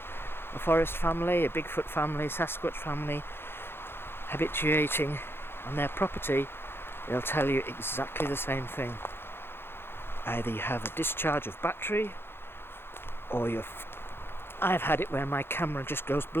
a forest family, a Bigfoot family, Sasquatch family, habituating on their property, they'll tell you exactly the same thing. Either you have a discharge of battery, or I've had it where my camera just goes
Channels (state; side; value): late; right; 0.11 ms